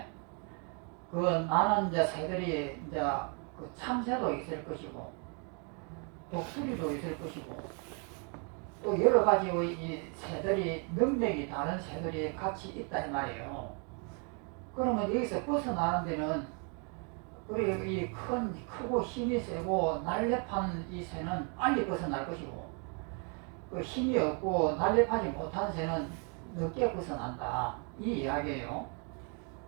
그 나는 이제 새들이 이제 그 참새도 있을 것이고 독수리도 있을 것이고 또 여러 가지의 이 새들이 능력이 다른 새들이 같이 있다 이 말이에요. 그러면 여기서 벗어나는 데는 그리고 이 크고 힘이 세고 날렵한 이 새는 빨리 벗어날 것이고 그 힘이 없고 날렵하지 못한 새는 늦게 벗어난다 이 이야기예요.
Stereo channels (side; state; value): left; quieter; 37.9 dB